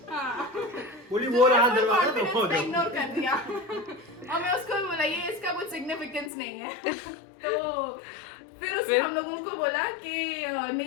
हाँ। बोली वो रहा दरवाजा, confidence दफा हो पे जाओ। इग्नोर कर दिया। और मैं उसको भी बोला ये इसका कुछ सिग्निफिकेंस नहीं है। तो फिर उसने हम लोगों को बोला कि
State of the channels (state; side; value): drops out; right; at 6.3 s